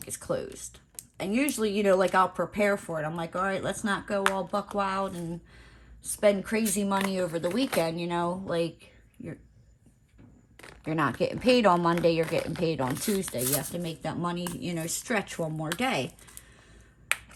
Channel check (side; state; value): both; identical; correlation 1.00